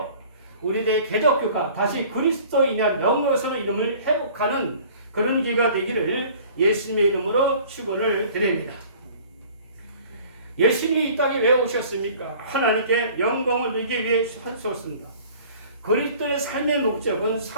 우리들의 개독교가 다시 그리스도인의 영광스러운 이름을 회복하는 그런 기회가 되기를 예수님의 이름으로 축원을 드립니다. 예수님이 이 땅에 왜 오셨습니까? 하나님께 영광을 누리기 위해 하셨습니다. 그리스도의 삶의 목적은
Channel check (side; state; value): both; inverted; correlation -0.49